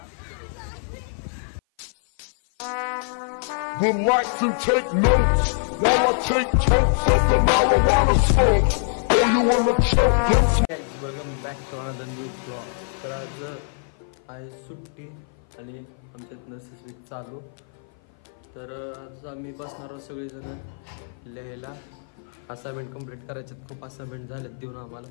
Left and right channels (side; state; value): right; silent; 55 dB below the other